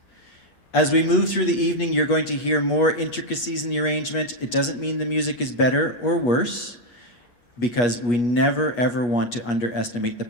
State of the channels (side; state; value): right; late; 8.3 ms